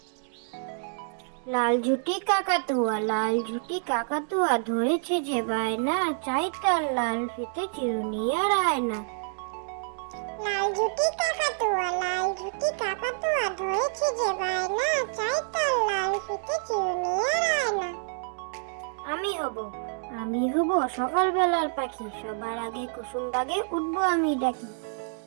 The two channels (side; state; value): left; silent; 60 dB below the other